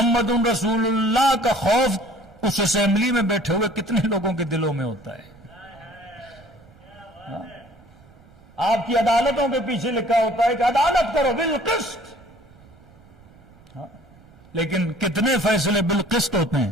رسول اللہ کا خوف اس اسمبلی میں بیٹھے ہوئے کتنے لوگوں کے دلوں میں ہوتا ہے؟ آپ کی عدالتوں کے پیچھے لکھا ہوتا ہے کہ عدالت کرو بالقسط، لیکن کتنے فیصلے بالقسط ہوتے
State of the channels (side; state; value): right; noise; rumble, 26 dB below the sound